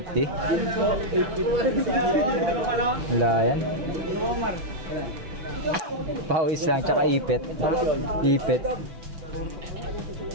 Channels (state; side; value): late; left; 6.0 ms